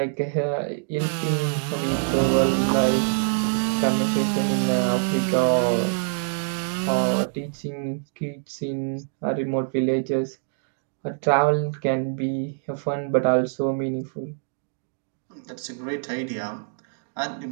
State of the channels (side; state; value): left; silent; digital silence